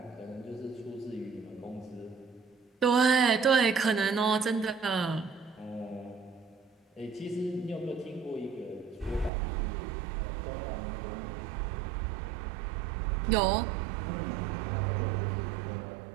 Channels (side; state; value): left; drops out; at 9.3 s